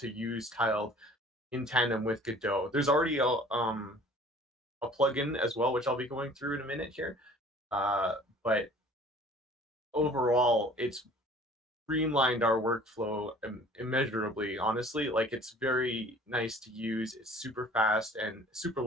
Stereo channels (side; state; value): both; normal; correlation 0.50